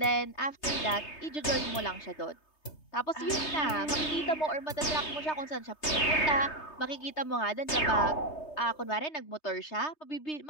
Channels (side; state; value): right; late; 3.3 ms